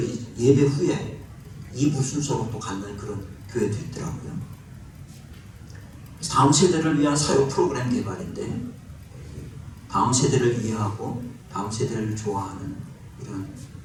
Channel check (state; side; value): identical; both; correlation 1.00